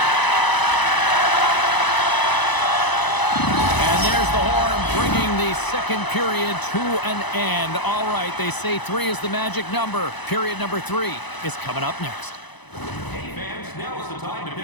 second period to an end. All right, they say 3 is the magic number. Period number 3 is coming up next. Hey fans, now is the time to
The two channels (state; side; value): late; right; 1.0 ms